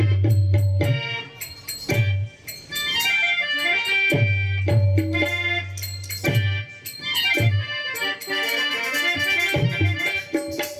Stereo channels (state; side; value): identical; both; correlation 1.00